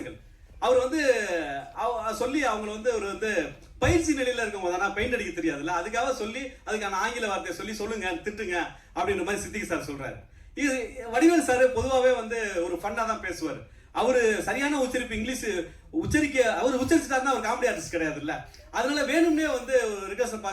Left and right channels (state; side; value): identical; both; correlation 1.00